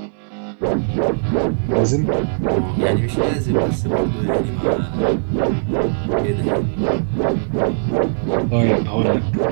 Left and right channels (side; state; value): left; silent; 66 dB below the other